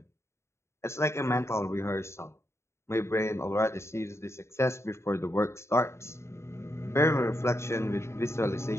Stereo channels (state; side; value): late; right; 0.13 ms